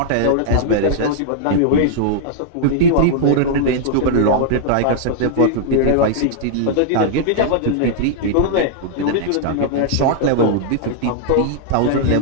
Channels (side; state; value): both; different; correlation -0.01